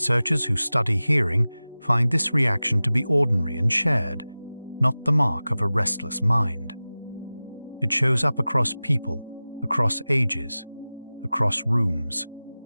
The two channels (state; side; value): inverted; both; correlation -0.97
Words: who study hearing find this reaction to be ordinary and shared, not the mark of a restless mind. It shows up across people, across ages, across rooms.